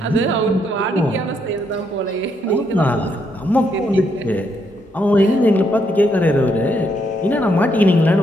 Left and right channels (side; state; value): both; normal; correlation 0.75